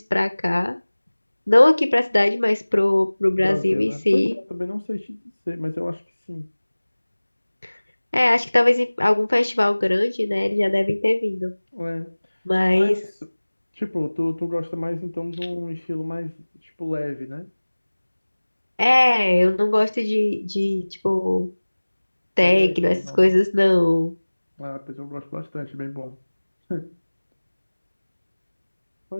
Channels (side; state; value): both; inverted; correlation -1.00